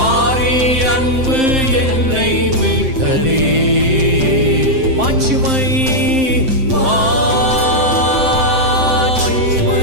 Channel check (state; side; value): late; left; 7.6 ms